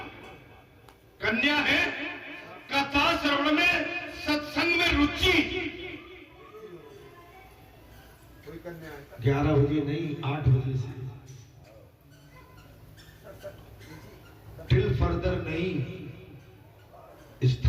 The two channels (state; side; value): identical; both; correlation 1.00